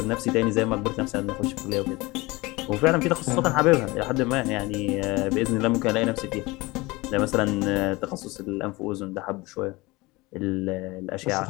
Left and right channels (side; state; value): right; quieter; 22.5 dB